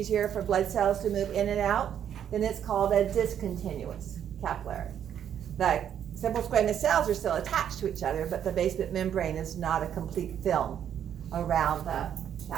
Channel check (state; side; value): quieter; left; 9.4 dB